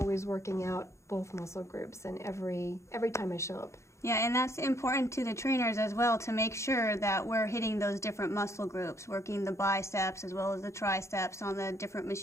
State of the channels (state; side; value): late; right; 0.14 ms